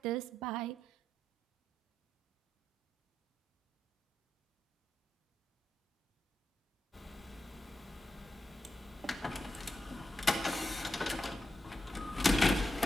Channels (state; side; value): normal; both; correlation 0.87